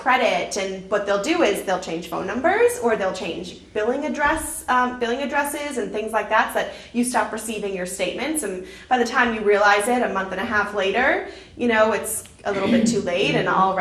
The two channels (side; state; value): both; identical; correlation 1.00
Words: And what they'll do is they'll change phone numbers, or they'll change billing addresses and things like that, so that you stop receiving your statements. And by the time you realize it, a month and a half later, you know, it's a little bit too late, and